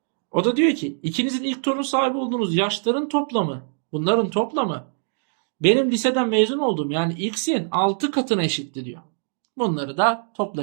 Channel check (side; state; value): left; silent; digital silence